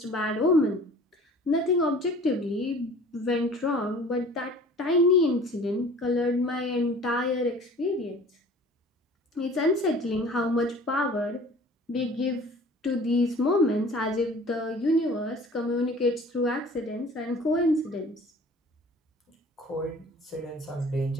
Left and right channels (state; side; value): normal; both; correlation 0.46